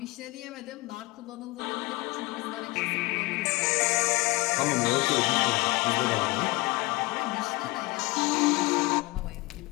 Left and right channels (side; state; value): right; quieter; 23.4 dB